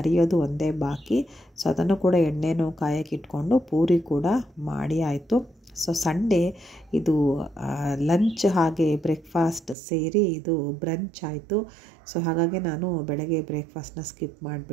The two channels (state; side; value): drops out; left; at 9.8 s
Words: ಒಂದೇ ಬಾಕಿ. ಸೊ ಅದನ್ನು ಕೂಡ ಎಣ್ಣೆನೂ ಕಾಯಕ್ಕೆ ಇಟ್ಕೊಂಡು ಪೂರಿ ಕೂಡ ಮಾಡಿ ಆಯಿತು. ಸೊ ಸಂಡೇ ಇದು ಲಂಚ್ ಹಾಗೆ ಬ್ರೇಕ್ಫಾಸ್ಟ್ ಸೇರಿ ಇದು ಬ್ರಂಚ್ ಆಯಿತು. ಸೊ ಹಾಗಾಗಿ ನಾನು ಬೆಳಗ್ಗೆ ಬ್ರೇಕ್ಫಾಸ್ಟ್ನ ಸ್ಕಿಪ್